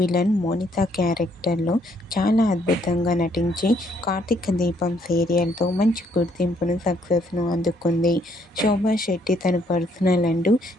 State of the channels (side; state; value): both; normal; correlation 0.69